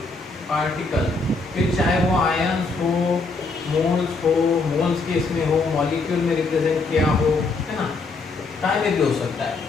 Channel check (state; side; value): quieter; right; 3.8 dB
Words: पार्टिकल, फिर चाहे वो आयंस हो, मोल्स के इसमें हो, मॉलिक्यूल में रिप्रेजेंट किया हो, है ना, टाइम में भी हो सकता है।